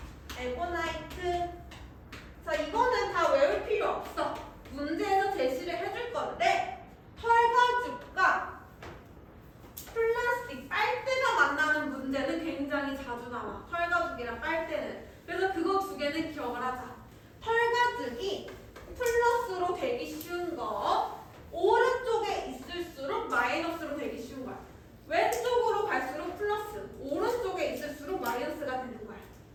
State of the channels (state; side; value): identical; both; correlation 1.00